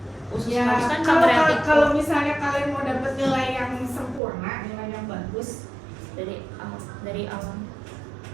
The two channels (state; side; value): drops out; left; at 4.2 s